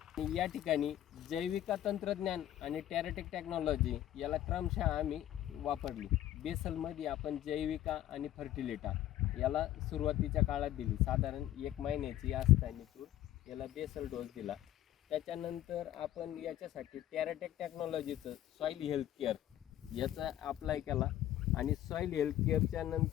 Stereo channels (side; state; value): right; quieter; 12.9 dB